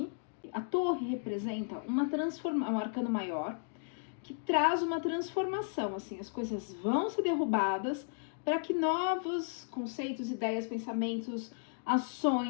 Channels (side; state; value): right; silent; digital silence